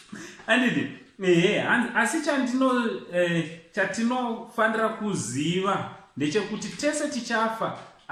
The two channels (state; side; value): identical; both; correlation 1.00